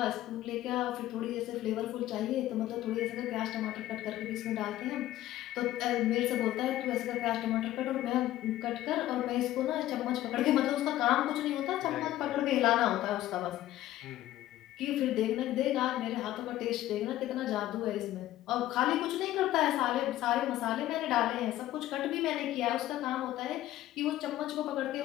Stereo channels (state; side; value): quieter; right; 14.4 dB